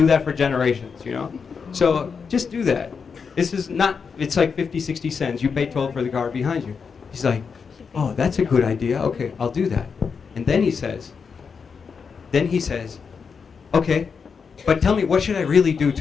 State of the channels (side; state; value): right; quieter; 5.8 dB